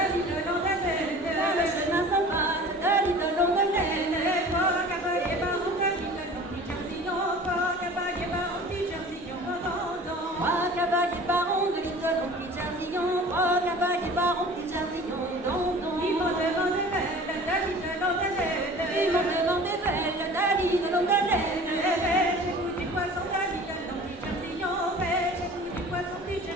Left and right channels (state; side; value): normal; both; correlation 0.43